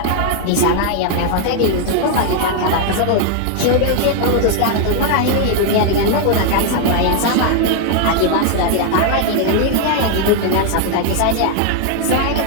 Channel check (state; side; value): different; both; correlation 0.00